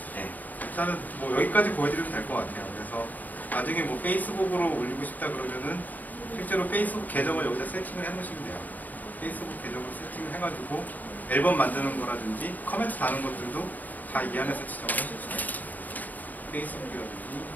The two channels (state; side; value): late; right; 0.082 ms